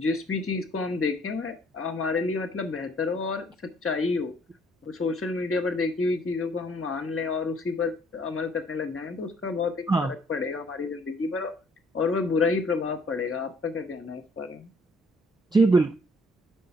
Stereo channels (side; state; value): both; normal; correlation 0.62